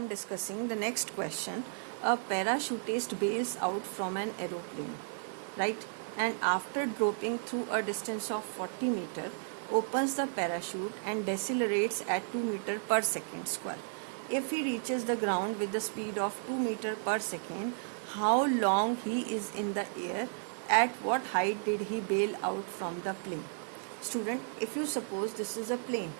discussing the next question. A parachutist bails out from an aeroplane, right? And after dropping through a distance of 40 meter, opens the parachute and decelerates at 2 meter per second square. If he reaches the ground with the speed of 2 meter per second, how long he is in the air? At what height did he bail out from the plane? Student, if you suppose this is a plane,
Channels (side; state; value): left; silent; 55 dB below the other